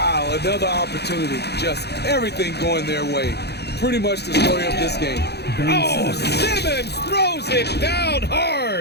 another opportunity. Just everything going their way. Pretty much the story of this game. Oh, Simmons throws it down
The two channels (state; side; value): late; right; 0.48 ms